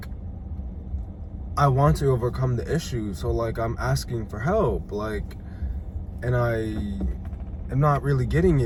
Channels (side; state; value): both; identical; correlation 1.00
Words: I want to overcome the issue, so like, I'm asking for help, like, and I am not really getting